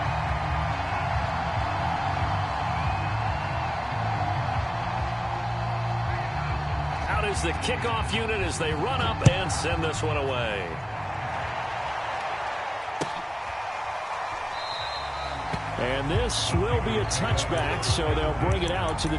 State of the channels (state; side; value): identical; both; correlation 1.00